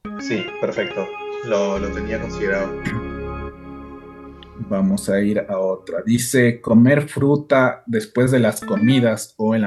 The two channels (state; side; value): identical; both; correlation 1.00